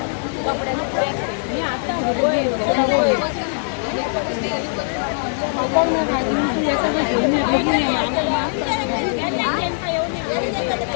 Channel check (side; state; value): right; silent; 65 dB below the other